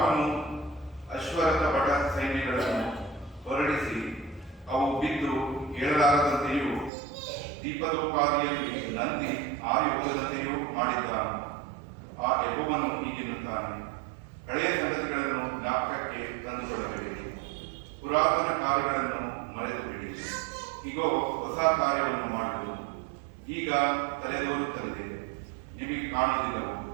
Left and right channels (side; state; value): left; drops out; at 6.9 s